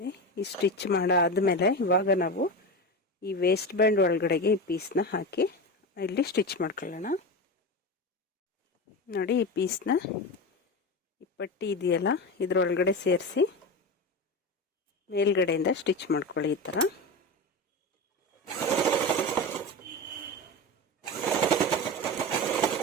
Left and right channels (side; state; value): both; normal; correlation 0.23